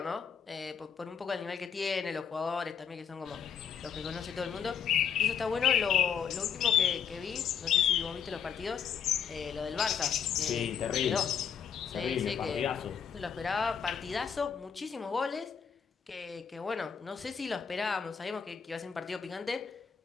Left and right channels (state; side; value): quieter; right; 7.4 dB